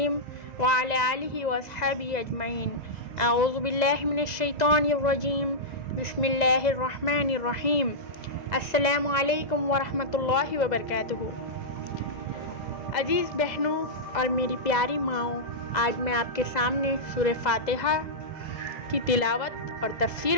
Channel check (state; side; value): late; right; 2.0 ms